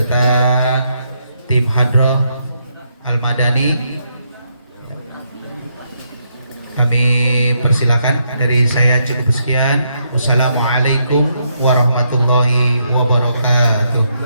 tim Hadroh Al-Madani. Kami persilakan. Dari saya cukup sekian. Wassalamualaikum warahmatullahi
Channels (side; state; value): both; inverted; correlation -0.77